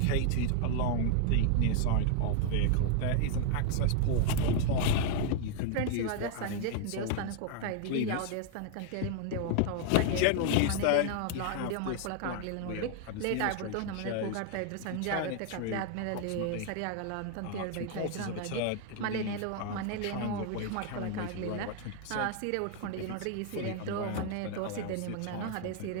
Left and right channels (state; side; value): different; both; correlation 0.00